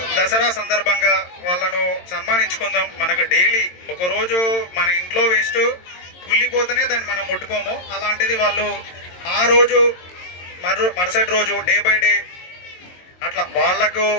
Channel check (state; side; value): late; right; 22 ms